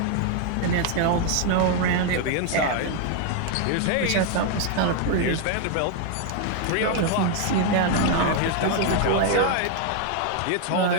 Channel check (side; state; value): both; different; correlation 0.00